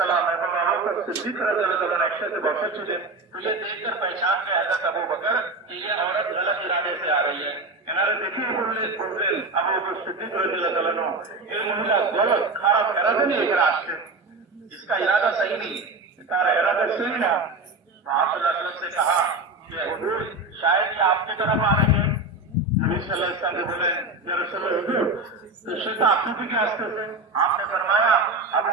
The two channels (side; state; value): left; quieter; 3.0 dB